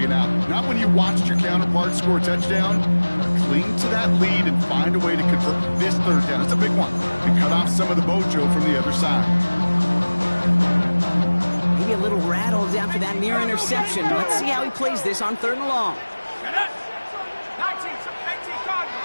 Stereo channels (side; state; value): both; inverted; correlation -1.00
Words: and out. Not when you watched your counterpart score a touchdown. Cling to that lead and find a way to convert this 3rd down. It's a big one. And cut off some of the mojo from the other side. Maybe a little rattled after that near interception. Let's see how he plays this on 3rd and long.